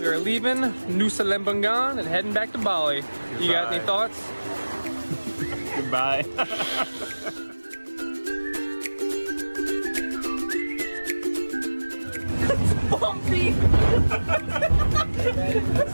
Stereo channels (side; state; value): both; inverted; correlation -1.00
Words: We are leaving Nusa Lembongan and heading back to Bali. You got any thoughts? Goodbye. Bumpy!